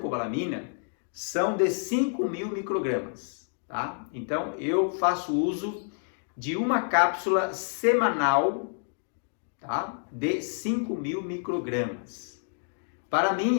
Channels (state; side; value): silent; right; 59 dB below the other